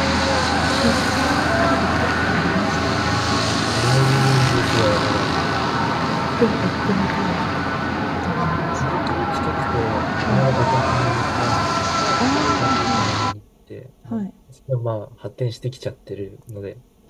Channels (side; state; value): both; identical; correlation 1.00